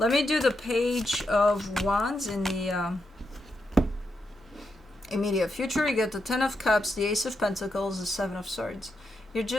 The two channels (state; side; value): normal; both; correlation 0.84